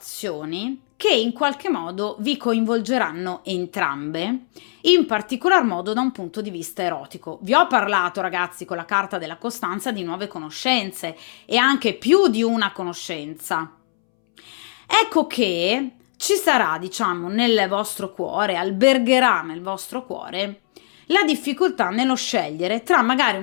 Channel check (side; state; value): right; silent; 64 dB below the other